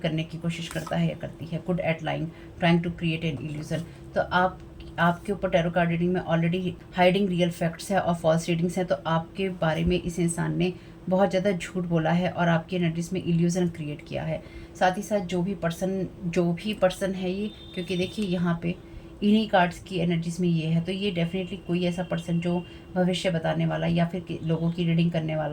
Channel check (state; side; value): identical; both; correlation 1.00